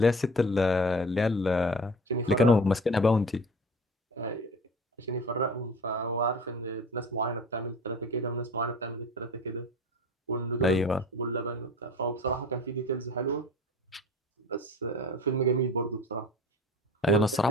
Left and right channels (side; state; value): both; normal; correlation 0.40